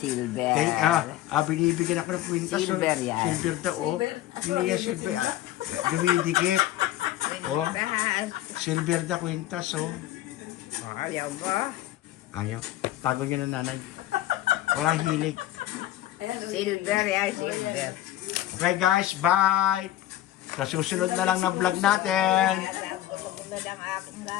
Binibigyan ako ng kwintas. Silver yan. Silver daw, oh. Hindi yan silver. Dumidikit. Oh. Silver da kwintas, oh. Ayaw ba? Ayaw. Tago niya na nanay. Walang hilig. Silver yan, silver. Okay guys, bye! Sa susunod na lang na vlog natin.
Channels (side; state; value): right; quieter; 14.0 dB